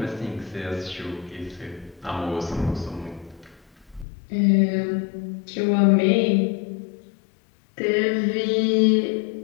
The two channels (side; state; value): right; drops out; at 4.0 s